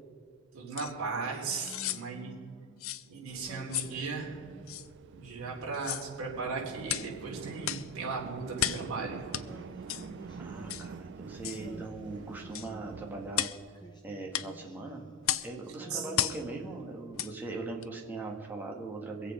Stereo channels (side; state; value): both; normal; correlation 0.14